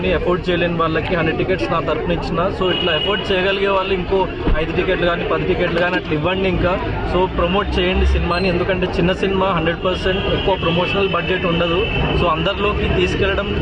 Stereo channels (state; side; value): identical; both; correlation 1.00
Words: ఎఫోర్డ్ చేయలేని వాళ్ళకి 100 టికెట్స్ నా తరఫున ఇచ్చిన. సో ఇట్లా ఎఫోర్డ్ చేయగలిగే వాళ్ళు ఇంకో 5 టికెట్లు కానీ 10 టికెట్లు కానీ అట్లా ఇవ్వండి. ఇంకా సో ప్రమోట్ చేయండి సినిమాని. ఎందుకంటే చిన్న సినిమా 100% ఎక్కువ ప్రమోషనల్ బడ్జెట్ ఉండదు. సో అందరిలోకి తీసుకెళ్లడం